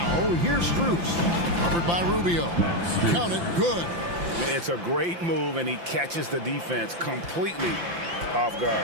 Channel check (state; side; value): late; left; 5.8 ms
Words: here's Strus. Covered by Rubio. Count it, good. It's a great move, and he catches the defense completely off